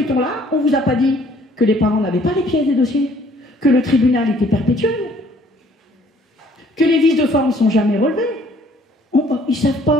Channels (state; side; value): normal; both; correlation 0.59